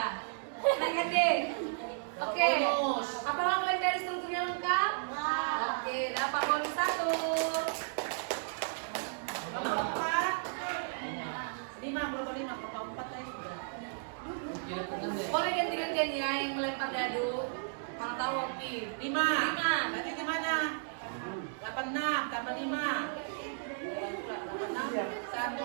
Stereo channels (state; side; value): silent; left; digital silence